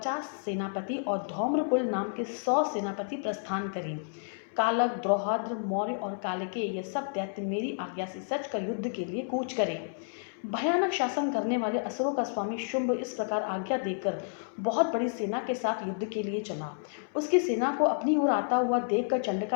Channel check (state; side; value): silent; right; 58 dB below the other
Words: सेनापति और धौम्रकुल नाम के 100 सेनापति प्रस्थान करें। कालक, द्रौहाद्र, मौर्य और कालिके ये सब दैत्य मेरी आज्ञा से सच कर युद्ध के लिए कूच करें। भयानक शासन करने वाले असुरों का स्वामी शुंभ इस प्रकार आज्ञा देकर बहुत बड़ी सेना के साथ युद्ध के लिए चला। उसकी सेना को अपनी ओर आता हुआ देखकर